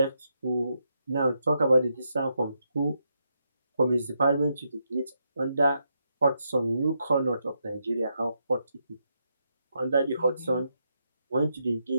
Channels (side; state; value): both; inverted; correlation -0.81